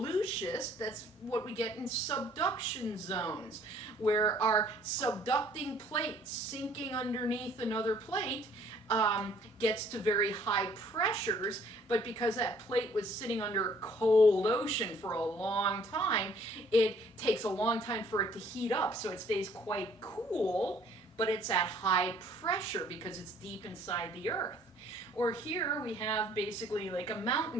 schist, that's what we get in subduction zones, where our subducting plate sinking underneath another plate gets to very high pressures, but because that plate was sitting under a cold ocean for a long time, it takes a long time for it to heat up, so it stays quite cool, but it's at high pressure because it's deep inside the earth. Or here we have basically like a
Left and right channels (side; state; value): both; normal; correlation 0.59